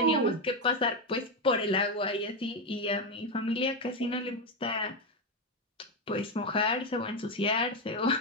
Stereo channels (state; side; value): normal; both; correlation 0.09